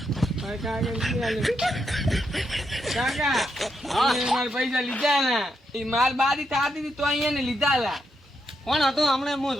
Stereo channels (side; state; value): both; normal; correlation 0.81